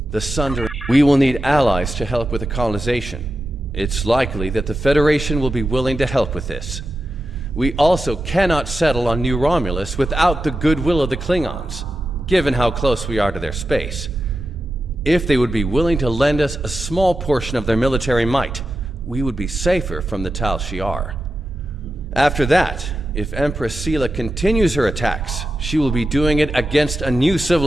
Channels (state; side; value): normal; both; correlation 0.90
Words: The Sundering... We will need allies to help with the colonization. It's likely that the Federation will be willing to help with this. We also cannot settle on New Romulus without the goodwill of the Klingons, given how close we are to their space. If they would be willing to lend us a small portion of their military might, we would be safer from the Tal Shiar. After that, if Empress Sela continues her attacks, she will be doing it against a new